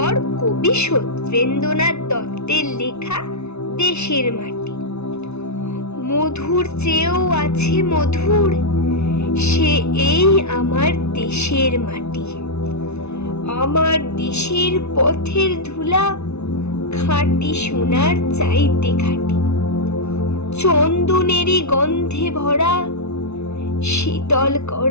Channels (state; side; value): late; right; 0.81 ms